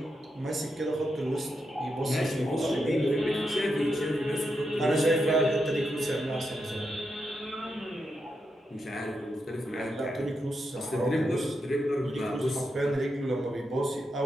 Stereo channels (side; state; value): both; normal; correlation 0.85